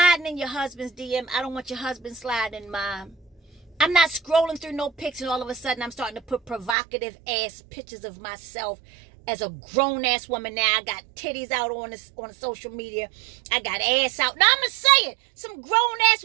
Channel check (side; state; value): left; drops out; at 6.8 s